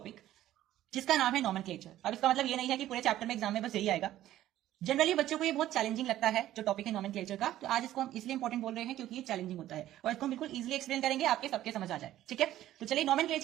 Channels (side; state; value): left; quieter; 13.4 dB